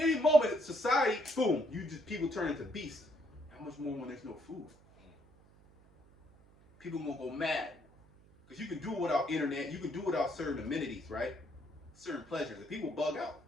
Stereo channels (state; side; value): noise; right; hum, 27 dB below the sound